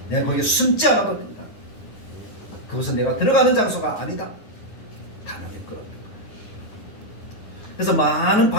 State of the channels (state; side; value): late; right; 9.4 ms